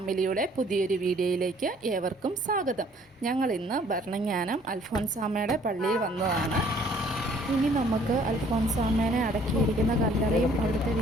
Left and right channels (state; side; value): normal; both; correlation 0.59